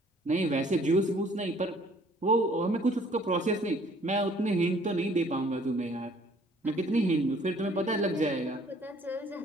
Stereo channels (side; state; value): both; normal; correlation 0.58